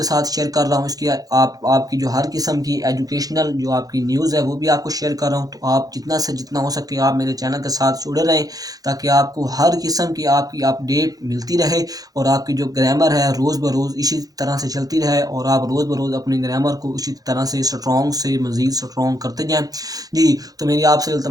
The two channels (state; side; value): late; left; 0.18 ms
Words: साथ शेयर कर रहा हूँ। इसकी आप आपकी जो हर किस्म की एजुकेशनल जो आपकी न्यूज़ है वो भी आपको शेयर कर रहा हूँ। तो आप जितना से जितना हो सके आप मेरे चैनल के साथ जुड़े रहें, ताकि आपको हर किस्म की आपकी अपडेट मिलती रहे और आपकी जो ग्रामर है रोज़ ब रोज़ इसी तरह से चलती रहे और आप रोज़ ब रोज़ अपनी ग्रामर को इसी तरह से स्ट्रॉन्ग से मज़ीद स्ट्रॉन्ग करते जाएँ। जी, तो मेरी आपसे